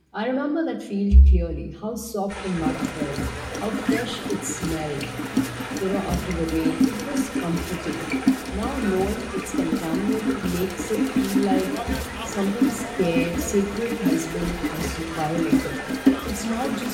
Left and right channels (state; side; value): identical; both; correlation 1.00